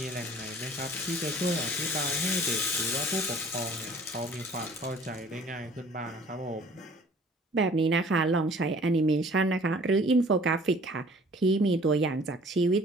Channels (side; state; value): both; normal; correlation 0.52